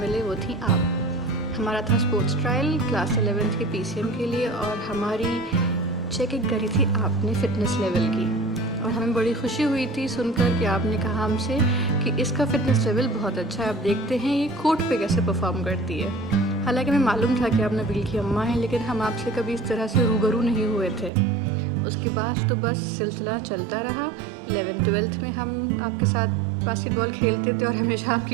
मिले वो थी आप। हमारा था स्पोर्ट्स ट्रायल क्लास 11th के PCM के लिए और हमारी चेकिंग करी थी आपने फ़िटनेस लेवल की और हमें बड़ी खुशी हुई थी सुनकर कि आपने कहा हमसे कि इसका फ़िटनेस लेवल बहुत अच्छा है, आप देखते हैं ये कोर्ट पे कैसे परफॉर्म करती है। हालांकि हमें मालूम था कि आप नबील की अम्मा हैं, लेकिन हम आपसे कभी इस तरह से रूबरू नहीं हुए थे। उसके बाद तो बस सिलसिला चलता रहा। 11th-12th में हम आपके साथ बास्केटबॉल खेलते थे और हमेशा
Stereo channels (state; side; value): drops out; left; at 21.1 s